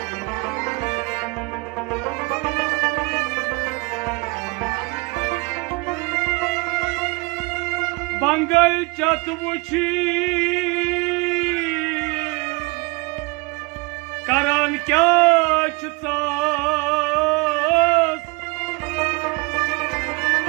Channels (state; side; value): quieter; left; 27.7 dB